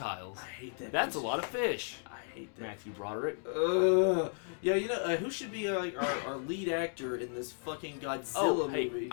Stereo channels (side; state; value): right; silent; 55 dB below the other